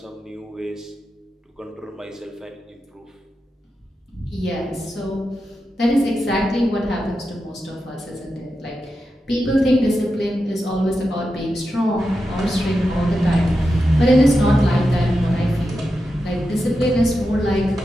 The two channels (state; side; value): normal; both; correlation 0.89